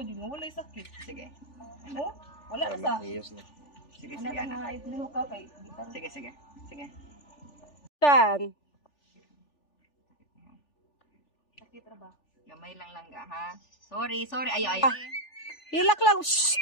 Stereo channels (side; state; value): right; late; 3.4 ms